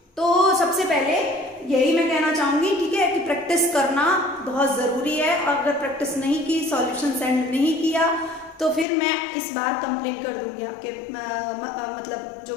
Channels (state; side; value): drops out; right; at 8.8 s